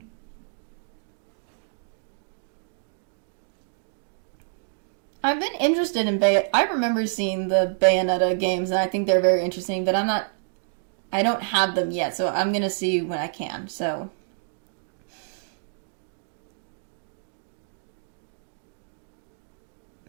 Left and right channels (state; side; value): silent; left; 60 dB below the other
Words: I've been interested in I remember seeing the Bayonetta games, and I think they're very interesting, but I don't have them yet, so I'm gonna see when I can, so.